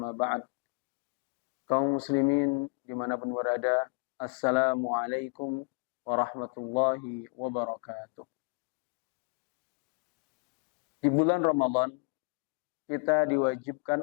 ba'd. Kaum muslimin dimanapun berada, assalamualaikum warahmatullahi wabarakatuh. Di bulan Ramadan kita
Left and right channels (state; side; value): quieter; right; 37.1 dB